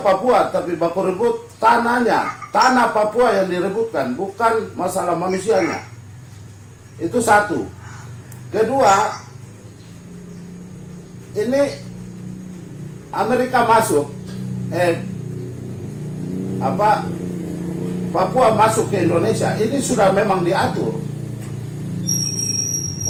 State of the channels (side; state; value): both; identical; correlation 1.00